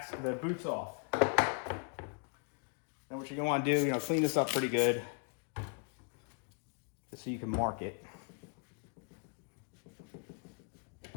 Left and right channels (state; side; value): quieter; right; 39.0 dB